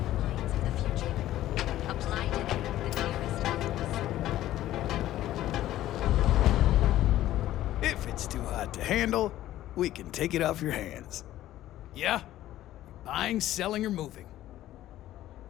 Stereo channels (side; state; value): right; quieter; 13.9 dB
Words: If it's too hot to handle, we can take it off your hands. Yeah? Buying, selling, or moving?